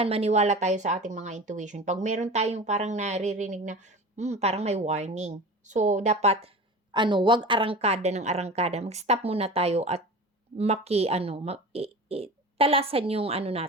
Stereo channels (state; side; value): normal; both; correlation 0.34